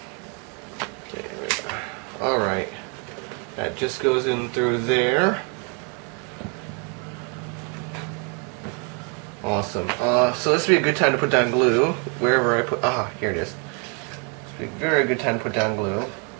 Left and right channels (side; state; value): left; quieter; 36.8 dB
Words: There we go. Alright. That just goes in through there. Awesome. So this would be a good time to put down glue wherever I put. Here it is. This would be a very good time to put down glue.